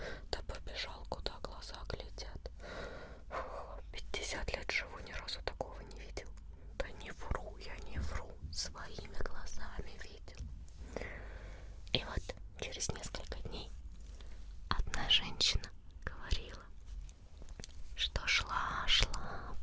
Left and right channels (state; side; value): identical; both; correlation 1.00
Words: да побежал, куда глаза глядят. 50 лет живу, ни разу такого не видел. Да не вру, я не вру, своими глазами видел. И вот через несколько дней одна женщина говорила, что шла